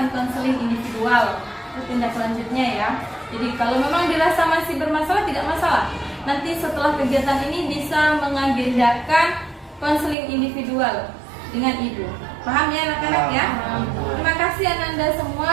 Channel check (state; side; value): drops out; left; at 10.2 s